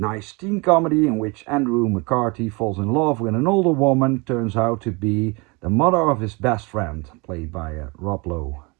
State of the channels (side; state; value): left; quieter; 28.0 dB